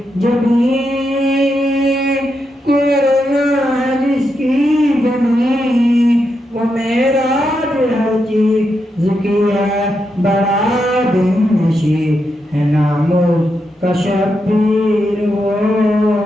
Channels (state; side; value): normal; both; correlation 0.84